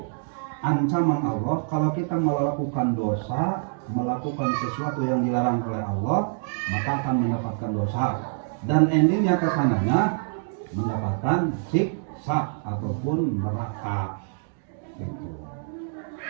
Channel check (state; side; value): silent; left; digital silence